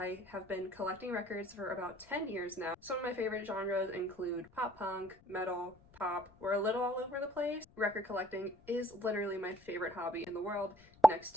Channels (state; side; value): noise; left; rumble, 26 dB below the sound